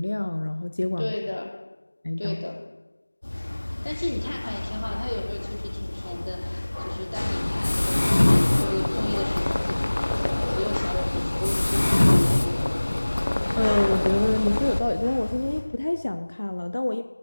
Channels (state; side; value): inverted; both; correlation -1.00